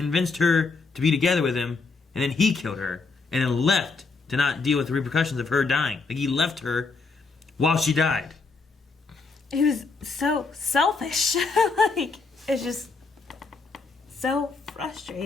her to be together with him, and then he killed her, and then left to not deal with the repercussions of her dying. Like, he left her while she died. He was so selfish. Like, it's just so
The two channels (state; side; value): quieter; right; 4.2 dB